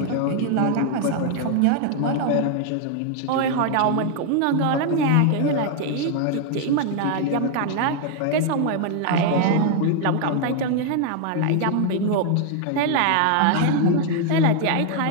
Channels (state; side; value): different; both; correlation 0.00